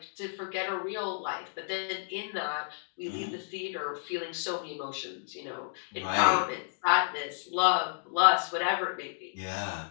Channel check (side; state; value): right; silent; digital silence